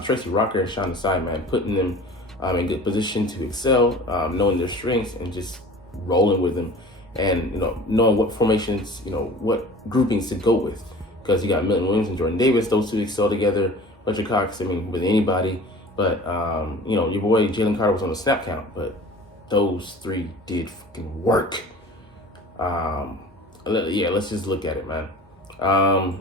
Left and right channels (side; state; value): both; normal; correlation 0.42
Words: Tracy Rocker and Sean Desai, man, putting them in good position to excel, knowing their strengths and just rolling with them, and knowing what formations, what groupings to go with, because you got Milton Williams and Jordan Davis; those two excel together. Fletcher Cox, I mean, with anybody, but your boy Jalen Carter was on the snap count, but those three did fucking work. Yeah, let's just look at it, man. I